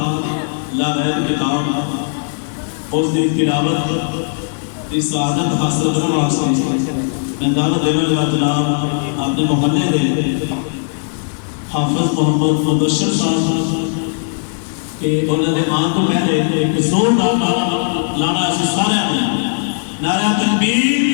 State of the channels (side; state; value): right; silent; digital silence